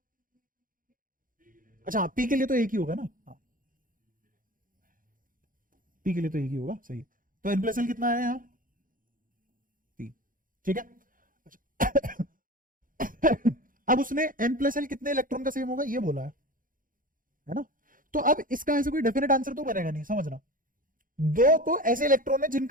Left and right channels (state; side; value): late; left; 0.40 ms